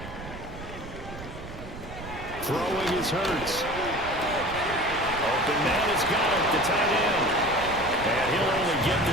Throwing is Hurts. Open man has got it, the tight end. And he'll only get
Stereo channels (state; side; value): noise; right; rumble, 12 dB below the sound